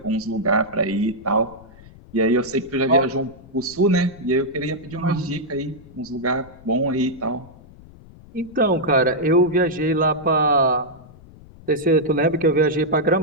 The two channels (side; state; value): left; noise; rumble, 22 dB below the sound